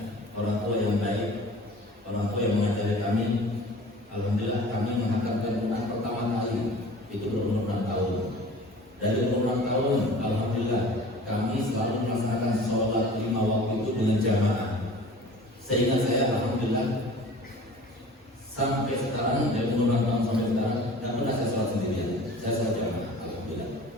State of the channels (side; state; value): both; normal; correlation 0.43